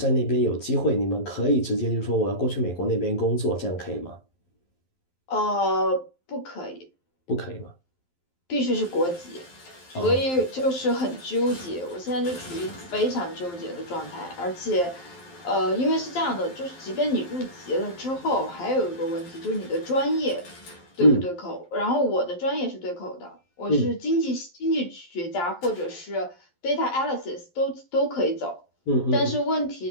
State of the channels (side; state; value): right; late; 11 ms